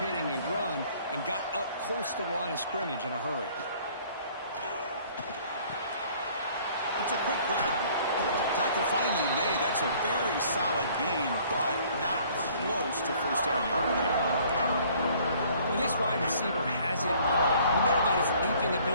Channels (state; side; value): inverted; both; correlation -0.56